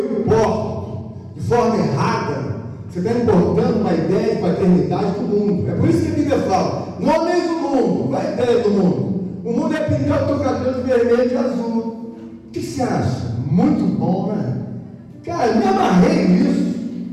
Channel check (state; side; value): identical; both; correlation 1.00